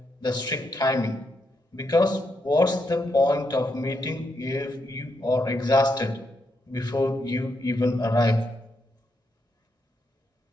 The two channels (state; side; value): normal; both; correlation 0.80